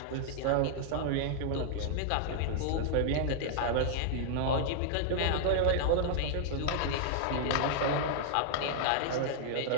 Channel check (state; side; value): different; both; correlation -0.01